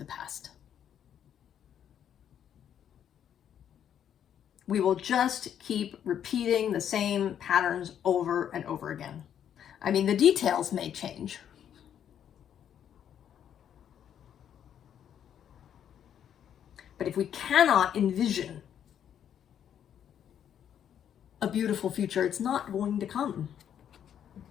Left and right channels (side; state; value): right; quieter; 9.4 dB